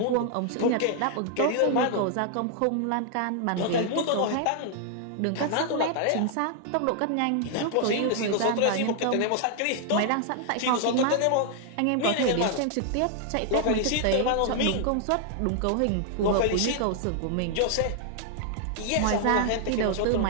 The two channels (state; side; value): different; both; correlation 0.00